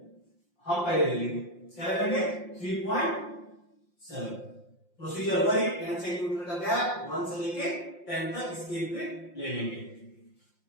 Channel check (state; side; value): late; right; 5.7 ms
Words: हम पहले ले लेंगे, क्या ले लेंगे 3.7। प्रोसीजर वही 10 सेंटीमीटर का गैप 1 से लेके 10 तक स्केल पे ले लेंगे।